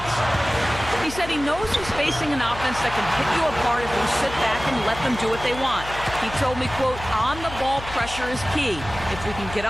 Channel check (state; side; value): noise; left; hum, 12 dB below the sound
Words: He said he knows he's facing an offense that can pick you apart if you sit back and let them do what they want. He told me, quote, on-the-ball pressure is key. If we can get